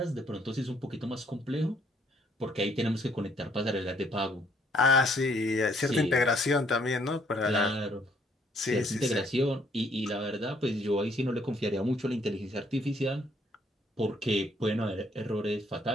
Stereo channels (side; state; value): both; normal; correlation 0.67